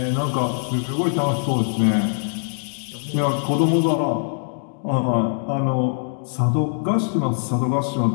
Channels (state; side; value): silent; right; digital silence